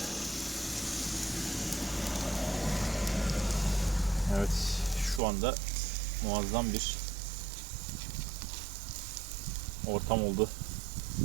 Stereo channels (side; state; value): left; drops out; at 5.2 s